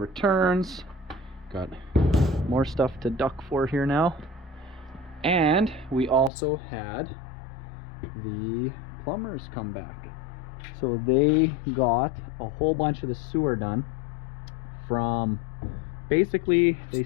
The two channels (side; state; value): right; drops out; at 6.3 s